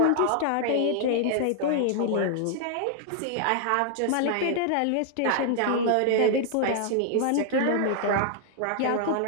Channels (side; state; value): both; different; correlation 0.00